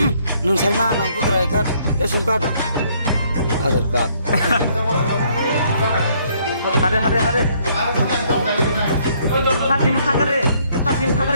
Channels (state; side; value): inverted; both; correlation -0.66